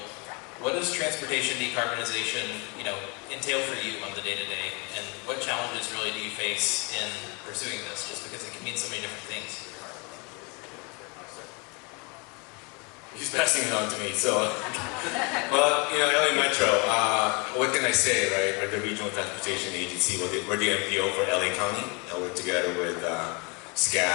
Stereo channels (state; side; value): quieter; right; 30.8 dB